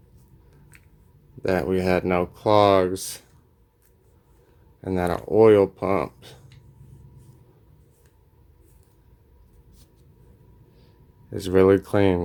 that we had no clogs and that our oil pump is really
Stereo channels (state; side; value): identical; both; correlation 1.00